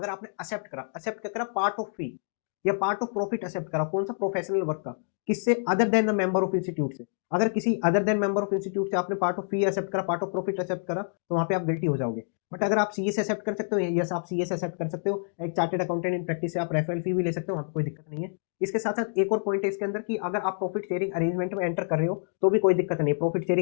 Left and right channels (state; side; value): silent; right; digital silence